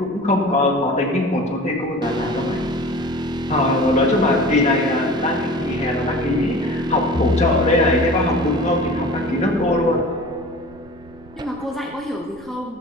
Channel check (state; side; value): noise; right; rumble, 24 dB below the sound